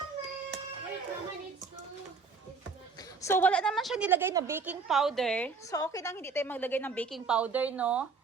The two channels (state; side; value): quieter; left; 4.8 dB